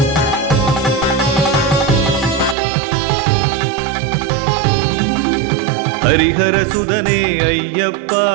ஹரிஹர சுதனே ஐயப்பா,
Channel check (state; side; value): drops out; left; at 2.6 s